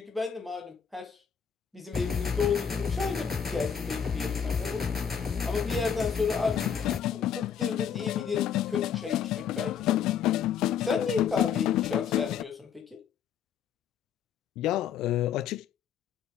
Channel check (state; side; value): quieter; right; 7.6 dB